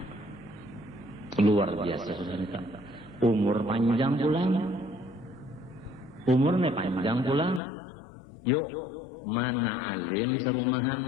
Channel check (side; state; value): right; drops out; at 7.6 s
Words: Luar biasa sudah nita. Umur panjang pulang. Umurnya panjang pulang. Yuk, mana alim serumahan,